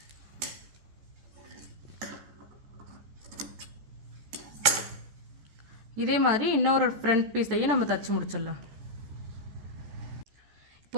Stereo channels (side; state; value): left; late; 14 ms